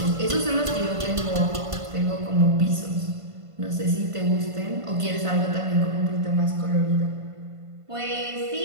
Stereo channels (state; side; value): late; left; 1.5 ms